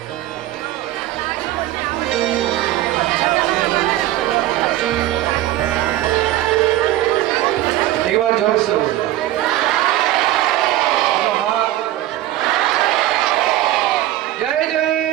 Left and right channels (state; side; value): quieter; left; 14.7 dB